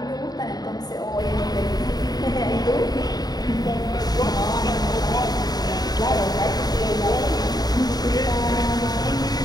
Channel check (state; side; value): late; right; 0.19 ms